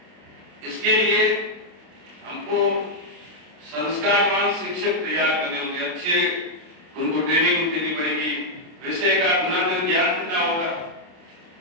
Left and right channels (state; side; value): late; left; 28 ms